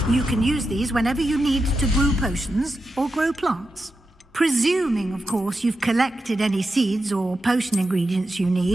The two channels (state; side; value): normal; both; correlation 0.89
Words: You can use these whenever you need to brew potions or grow plants. Presuming, of course, you've collected any seeds or potion ingredients you